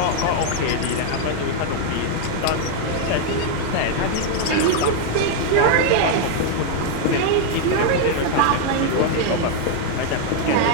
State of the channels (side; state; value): both; different; correlation 0.00